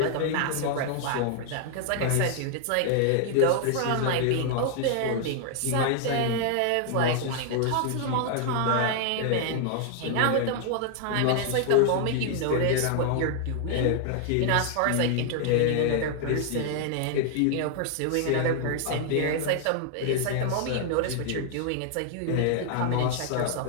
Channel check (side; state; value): both; different; correlation 0.00